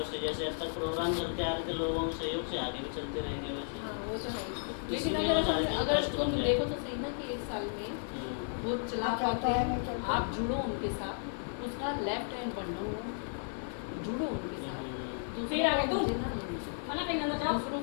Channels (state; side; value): silent; right; 55 dB below the other